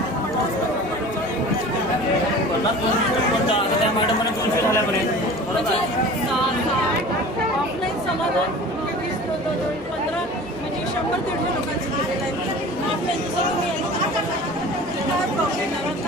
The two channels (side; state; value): both; normal; correlation 0.40